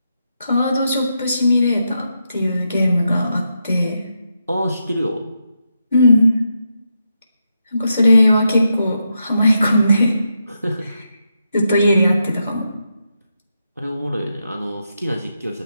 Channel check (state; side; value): inverted; both; correlation -0.84